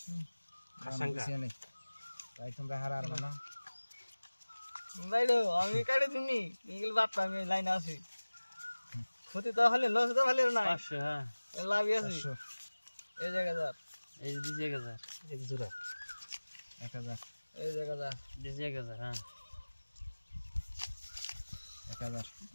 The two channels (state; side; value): inverted; both; correlation -1.00